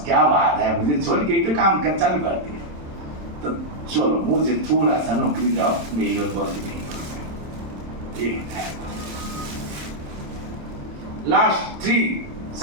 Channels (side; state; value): left; late; 27 ms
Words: क्या बात है, मुझे छोड़ के तो काम कर चालू कर दिया, तो चलो मुझे थोड़ा सा नौकरी दो, मेरी और बोल दी। लास्ट 3